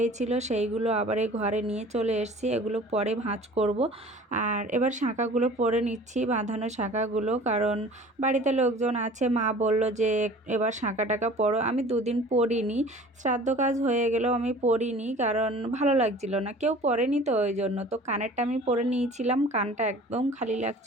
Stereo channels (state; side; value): normal; both; correlation 0.45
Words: সেইগুলো আবার এই ঘরে নিয়ে চলে এসেছি, এগুলো পরে ভাঁজ করব। আর এবার শাঁখাগুলো পরে নিচ্ছি, বাঁধানো শাঁখাগুলো, কারণ বাড়িতে লোকজন আছে। মা বলল যে এবার শাঁখা টাকা পরো। আমি 2 দিন পরিনি, শ্রাদ্ধ কাজ হয়ে গেলেও আমি পরিনি, কারণ ভালো লাগছিল না, কেউ পরেনি তো ওই জন্য। তো কানেরটা আমি পরে নিয়েছিলাম, কানটা একদম খালি